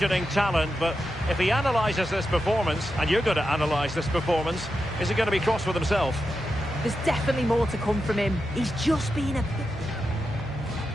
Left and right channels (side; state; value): both; normal; correlation 0.88